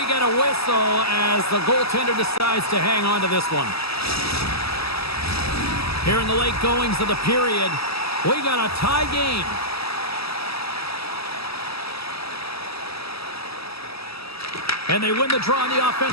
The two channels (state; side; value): late; right; 0.77 ms